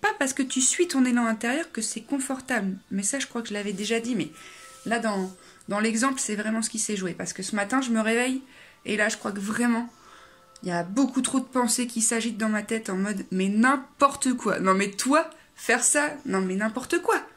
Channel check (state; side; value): identical; both; correlation 1.00